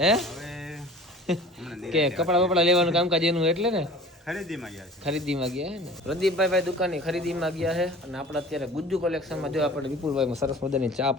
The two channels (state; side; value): normal; both; correlation 0.43